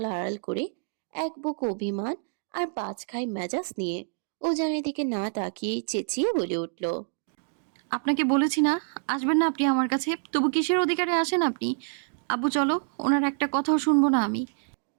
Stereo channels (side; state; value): left; silent; digital silence